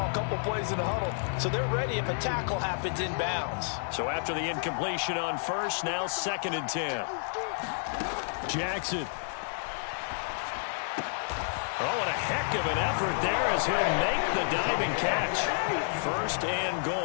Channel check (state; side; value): silent; right; digital silence